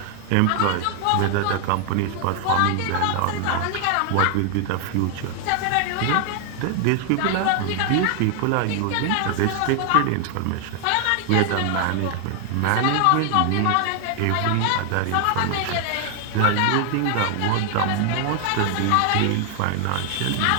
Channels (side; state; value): both; different; correlation 0.00